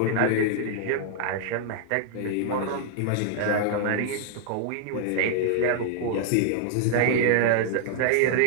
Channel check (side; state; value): both; different; correlation -0.01